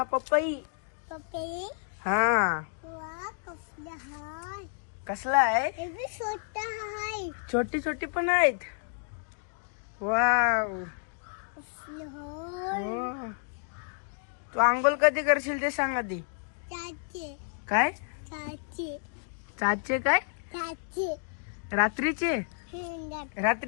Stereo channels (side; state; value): right; silent; digital silence